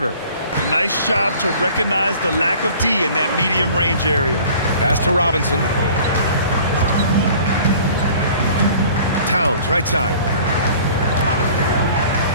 Nice job to recognize the lack of D in that medium range area. Pass to Robinson. Towns, right side.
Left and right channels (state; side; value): inverted; both; correlation -0.48